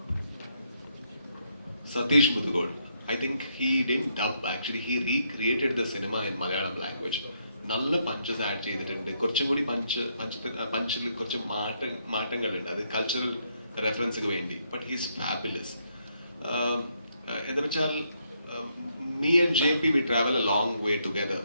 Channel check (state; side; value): inverted; both; correlation -0.75